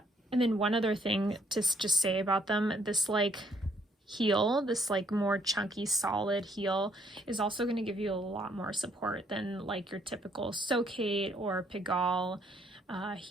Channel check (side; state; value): both; normal; correlation 0.68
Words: then one other thing to just say about them, this like heel, this like more chunky solid heel is also going to give you a lot more support than like your typical Socate or Pigalle